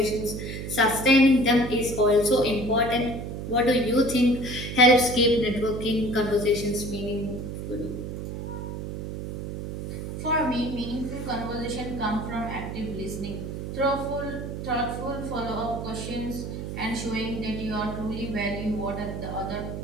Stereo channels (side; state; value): right; noise; hum, 6 dB below the sound